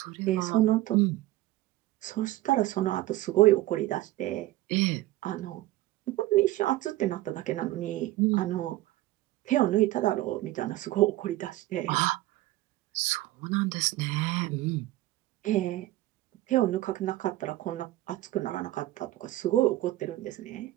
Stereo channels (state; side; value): quieter; left; 16.5 dB